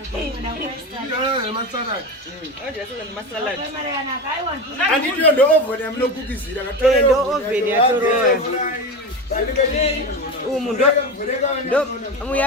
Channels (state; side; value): normal; both; correlation 0.22